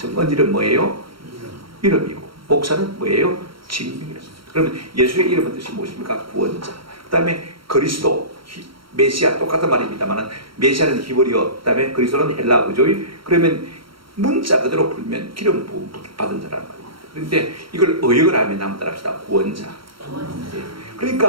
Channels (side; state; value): left; late; 0.74 ms